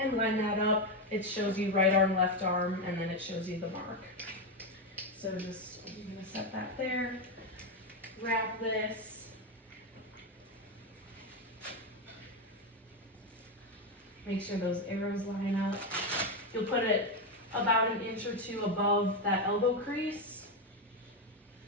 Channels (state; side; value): normal; both; correlation 0.09